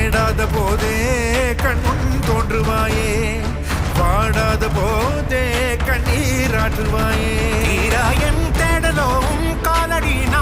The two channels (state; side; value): identical; both; correlation 1.00